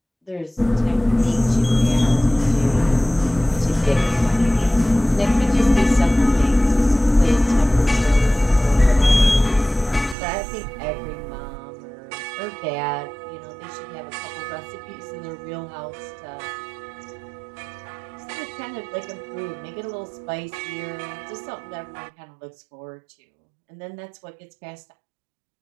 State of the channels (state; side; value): drops out; left; at 10.2 s